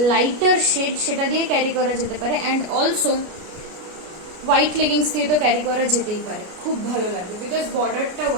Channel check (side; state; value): left; late; 33 ms